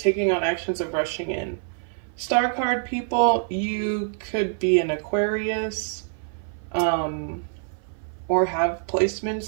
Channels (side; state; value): left; silent; 57 dB below the other